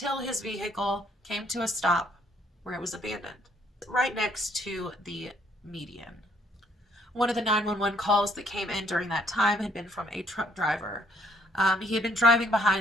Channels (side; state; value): both; normal; correlation 0.66